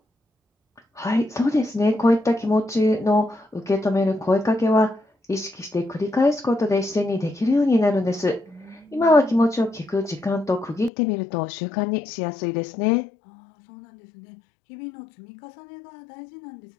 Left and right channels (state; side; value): drops out; right; at 10.9 s